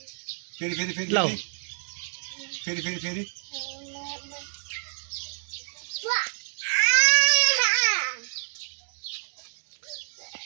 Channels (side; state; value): left; silent; 59 dB below the other